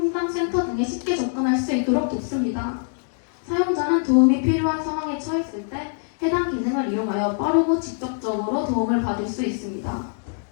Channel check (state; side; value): silent; right; 59 dB below the other